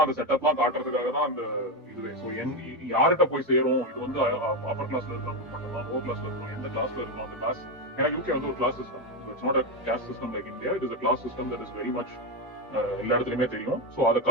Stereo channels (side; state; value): both; normal; correlation 0.10